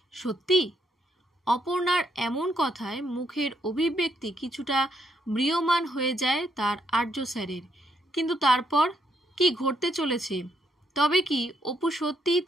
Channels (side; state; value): both; normal; correlation 0.74